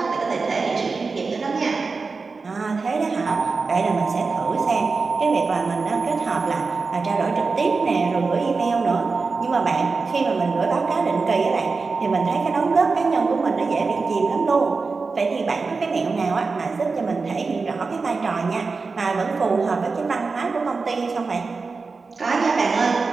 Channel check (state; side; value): quieter; left; 4.3 dB